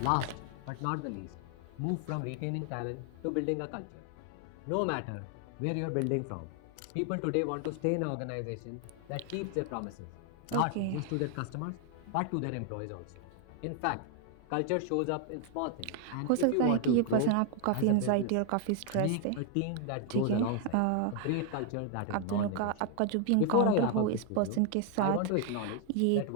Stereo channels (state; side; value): different; both; correlation 0.00